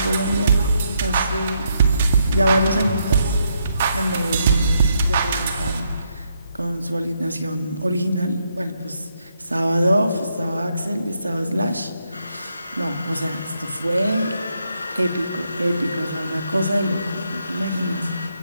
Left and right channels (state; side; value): inverted; both; correlation -0.78